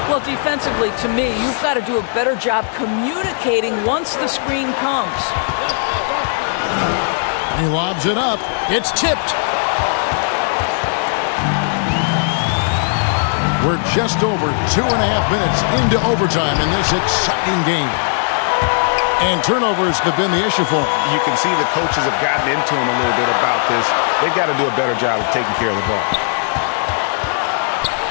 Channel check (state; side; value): silent; right; digital silence